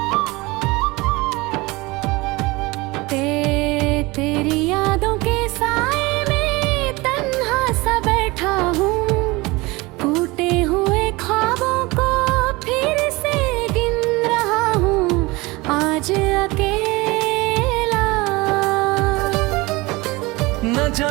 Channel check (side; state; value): left; quieter; 23.0 dB